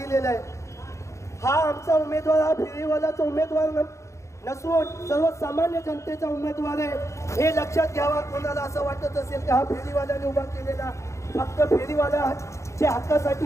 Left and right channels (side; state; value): right; late; 0.14 ms